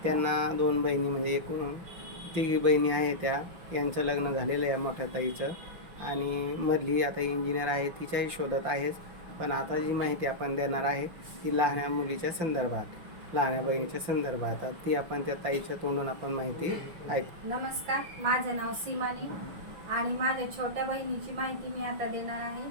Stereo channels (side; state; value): left; late; 5.8 ms